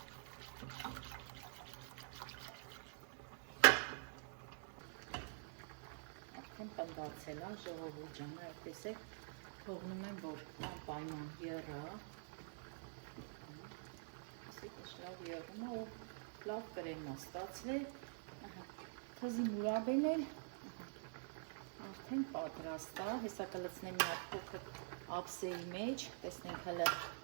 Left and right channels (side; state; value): left; silent; digital silence